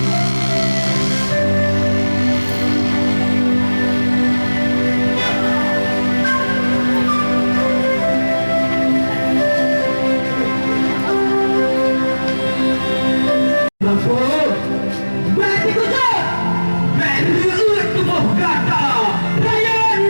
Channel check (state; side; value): inverted; both; correlation -1.00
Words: Berarti kujur, berliut tubuh kata, rayan